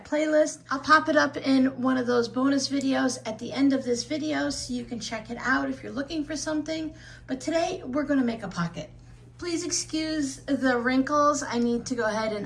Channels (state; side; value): identical; both; correlation 1.00